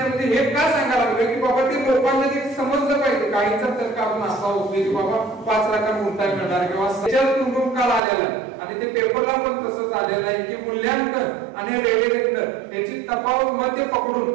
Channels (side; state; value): left; drops out; at 8.0 s